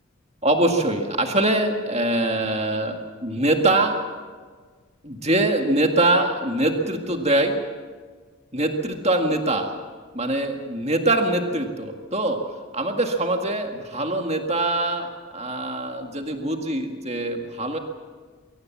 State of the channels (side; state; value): both; normal; correlation 0.07